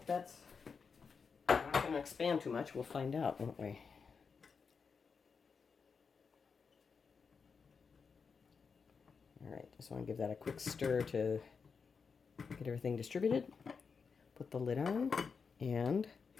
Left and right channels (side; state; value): right; quieter; 5.5 dB